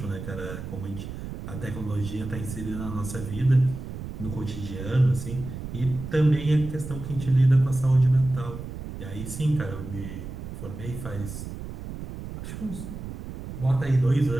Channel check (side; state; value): right; noise; rumble, 9 dB below the sound